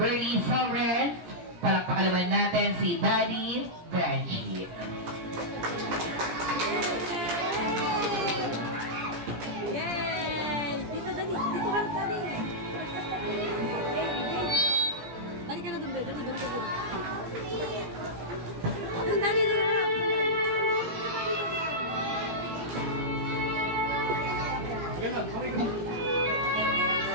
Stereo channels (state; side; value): late; left; 17 ms